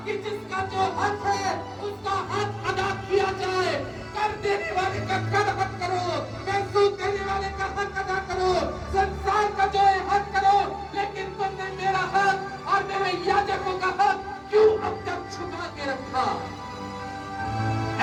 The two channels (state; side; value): identical; both; correlation 1.00